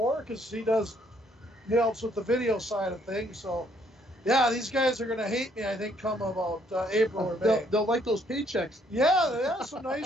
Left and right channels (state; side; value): normal; both; correlation 0.67